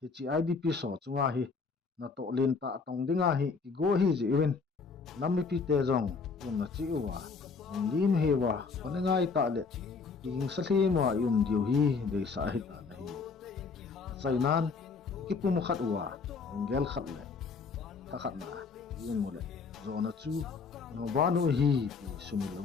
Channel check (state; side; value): quieter; right; 4.9 dB